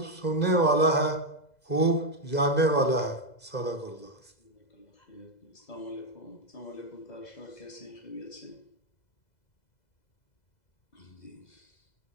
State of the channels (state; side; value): late; right; 2.0 ms